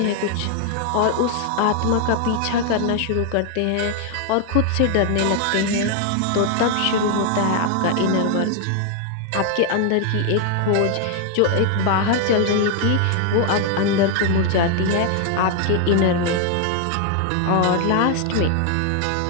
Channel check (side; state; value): both; different; correlation 0.00